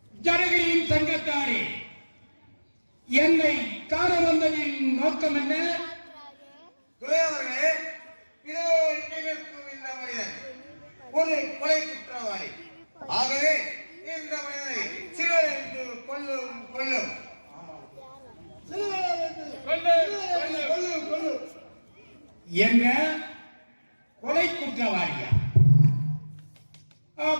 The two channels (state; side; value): inverted; both; correlation -1.00